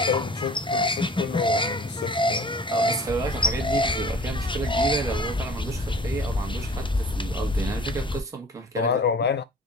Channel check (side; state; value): both; normal; correlation 0.45